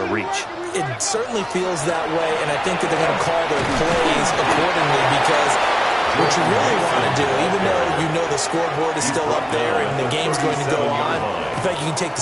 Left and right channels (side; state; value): both; identical; correlation 1.00